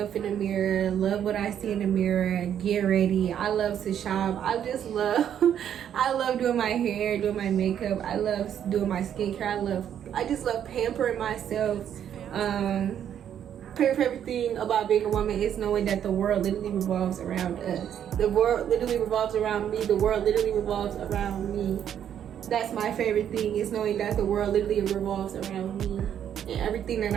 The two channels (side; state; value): left; quieter; 9.5 dB